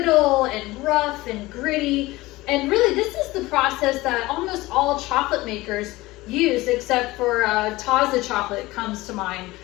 and rough and gritty. And really, this is the process that almost all chocolate makers use, except for Taza chocolate comes to mind,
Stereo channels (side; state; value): right; quieter; 19.6 dB